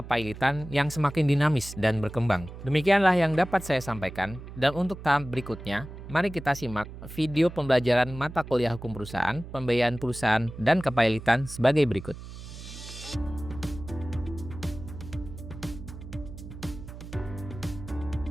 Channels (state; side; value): noise; right; hum, 13 dB below the sound